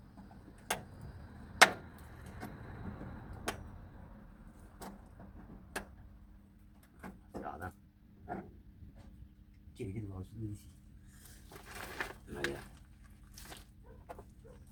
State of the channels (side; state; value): both; identical; correlation 1.00